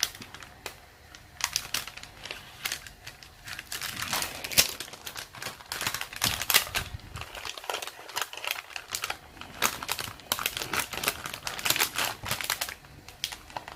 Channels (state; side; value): identical; both; correlation 1.00